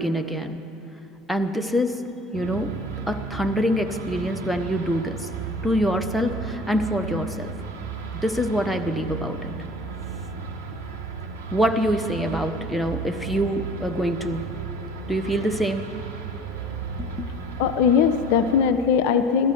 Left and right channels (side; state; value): both; normal; correlation 0.44